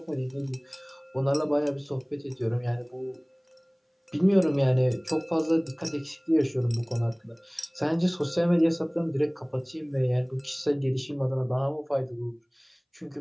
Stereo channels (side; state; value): both; identical; correlation 1.00